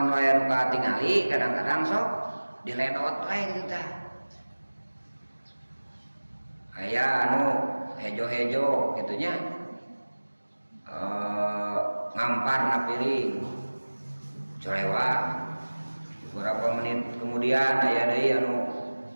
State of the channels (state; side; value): inverted; both; correlation -1.00